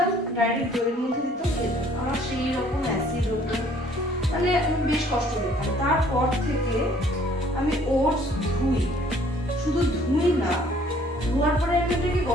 ডাইরেক্ট দইয়ের মধ্যে দিতাম, খেতাম, আমার সেই রকম অ্যাসিড হতো, মানে আমি বেশ কষ্ট পেতাম। তারপর থেকে আমি ওটস ধুই, শুধু ধুই না, ধোয়ার পরে আমি ওটাকে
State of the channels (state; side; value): normal; both; correlation 0.59